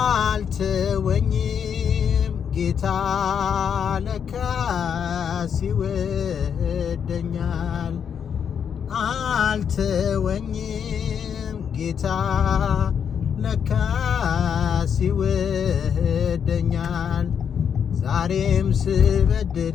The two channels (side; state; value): right; quieter; 7.7 dB